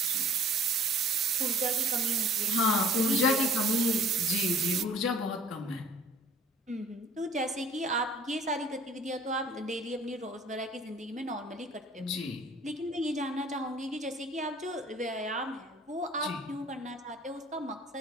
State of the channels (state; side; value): normal; both; correlation 0.52